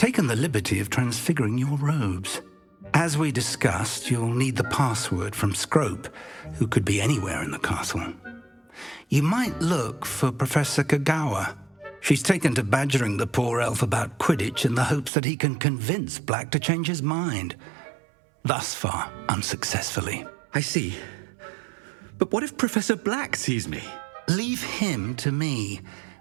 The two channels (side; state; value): left; drops out; at 15.1 s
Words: the liberty of transfiguring your robes. As we discussed, you'll need the password from Scrope, who could be anywhere in the castle. You might look for Professor Kagawa. She's taken to badgering the poor elf about Quidditch in the hopes that he can convince Black to change his mind. Thus far, unsuccessfully. I see. But what if Professor Black sees me? Leave him to me.